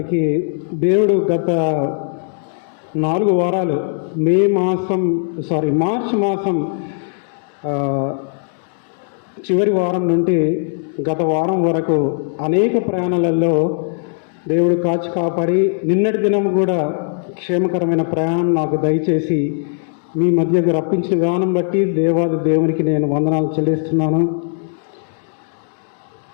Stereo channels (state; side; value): silent; right; digital silence